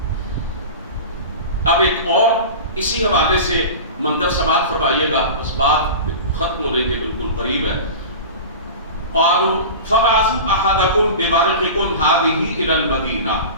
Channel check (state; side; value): inverted; both; correlation -0.31